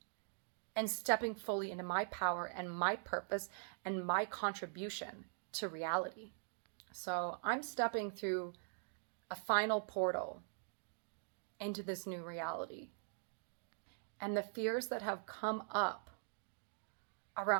and stepping fully into my power and my purpose and my contribution to reality. So I'm stepping through a final portal into this new reality. And the fears that have come up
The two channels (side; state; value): left; silent; digital silence